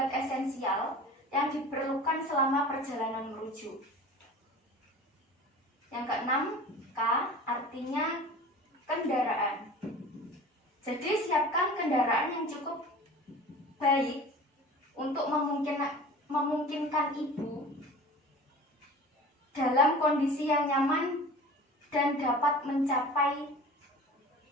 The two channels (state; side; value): normal; both; correlation 0.39